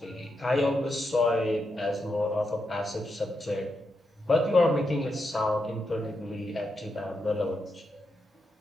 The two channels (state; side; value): normal; both; correlation 0.84